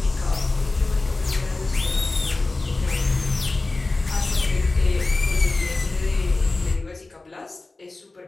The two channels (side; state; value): right; quieter; 3.3 dB